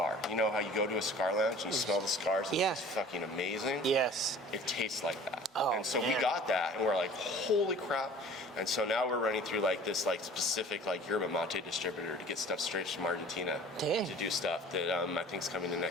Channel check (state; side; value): normal; both; correlation 0.46